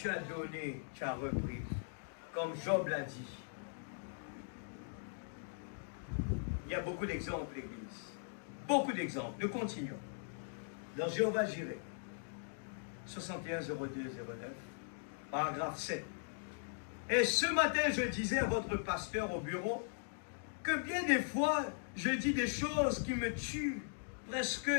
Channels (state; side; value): silent; right; digital silence